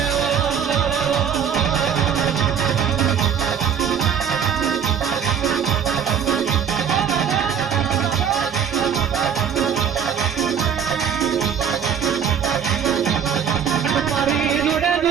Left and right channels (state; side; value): quieter; left; 7.7 dB